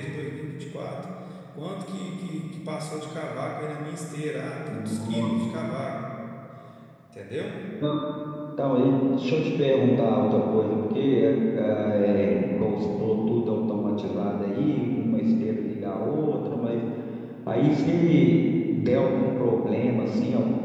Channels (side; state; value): both; identical; correlation 1.00